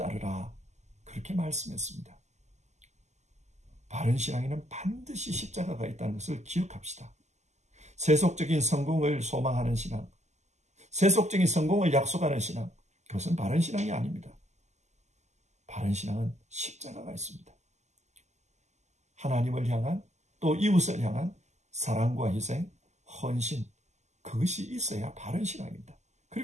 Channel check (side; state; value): left; late; 0.33 ms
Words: 그렇게 말씀했습니다. 바른 신앙에는 반드시 십자가가 있다는 것을 기억합시다. 세속적인 성공을 소망하는 신앙, 세속적인 성공을 약속하는 신앙, 그것은 바른 신앙이 아닙니다. 바른 신앙은 십자가가 있습니다. 하나님을 향한 또 이웃을 향한 사랑과 희생, 헌신, 그것이 있어야 바른 신앙입니다.